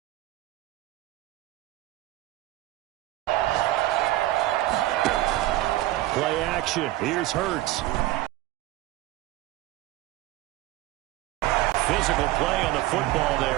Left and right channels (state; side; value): quieter; left; 16.5 dB